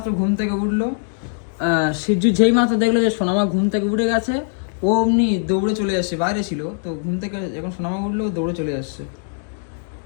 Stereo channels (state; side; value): silent; right; digital silence